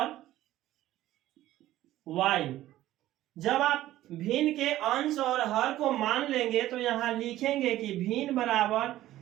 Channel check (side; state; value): left; quieter; 14.5 dB